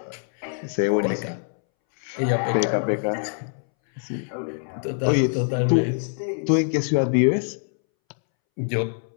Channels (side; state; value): right; silent; 62 dB below the other